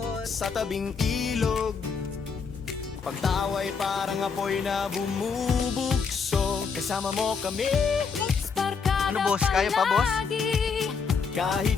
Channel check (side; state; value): right; quieter; 5.6 dB